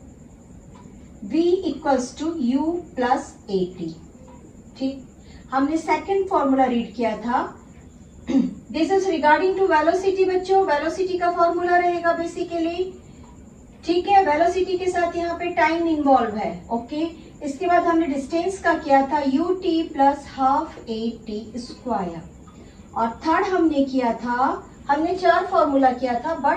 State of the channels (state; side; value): identical; both; correlation 1.00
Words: v equals to u plus A T. ठीक, हमने सेकंड फॉर्मूला रीड किया था this is regarding to velocity. बच्चों, वेलोसिटी का फॉर्मूला रहेगा बेसिकली। ठीक है, वेलोसिटी के साथ यहाँ पे टाइम इन्वॉल्व है। ओके, इसके बाद हमने डिस्टेंस का किया था u t plus half A T square. और थर्ड हमने किया था, हमने 4 फॉर्मूला किया था